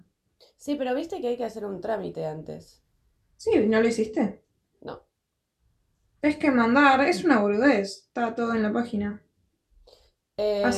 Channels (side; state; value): both; identical; correlation 1.00